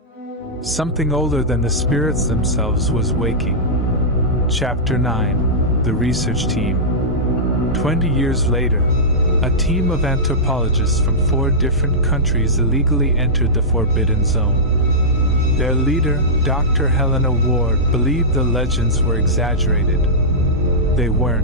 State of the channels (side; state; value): both; normal; correlation -0.13